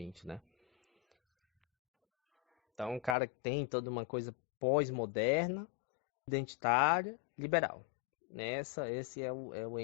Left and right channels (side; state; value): right; drops out; at 3.2 s